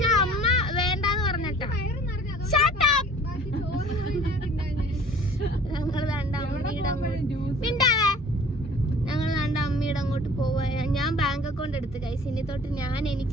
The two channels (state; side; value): normal; both; correlation 0.49